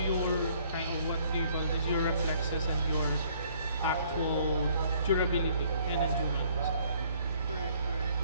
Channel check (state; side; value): inverted; both; correlation -0.61